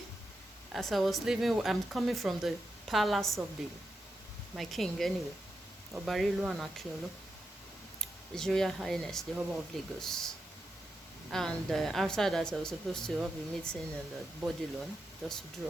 As I was leaving, I'm coming from the palace of my king anyway, Obarilu and Akiolu, His Royal Highness, the Oba of Lagos. And after that, I was supposed to have a meeting in the body loan just to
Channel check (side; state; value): both; normal; correlation 0.87